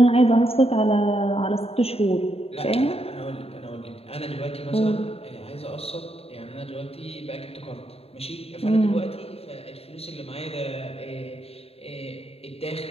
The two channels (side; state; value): right; late; 0.29 ms